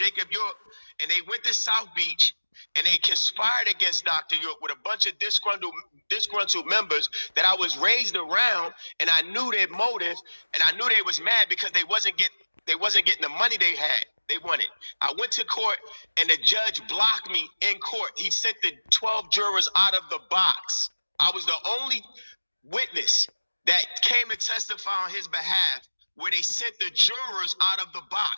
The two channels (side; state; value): both; inverted; correlation -1.00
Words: York, and they went to South Beach. And they conspired against Dr. York with a bunch of disgruntled members that I was raised around, and I knew their motive, and I knew they was mad because they wasn't getting the money they wanted. I went to court, and the judge blocked me in court. He sent the 12 jurors out of the box. I was the only witness that came to testify on his behalf where they sent the jurors out of the